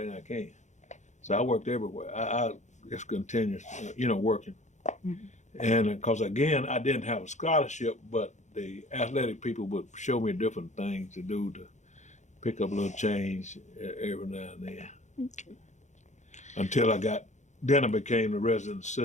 I can. So I worked everywhere. I just continued, working. Mm-hmm. And because again, I didn't have a scholarship, but the athletic people would show me different things to do to pick up a little change every now and then. Okay. Until I became the resident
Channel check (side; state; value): right; late; 0.34 ms